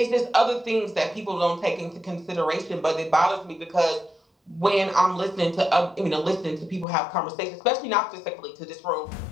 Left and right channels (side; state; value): right; drops out; at 6.9 s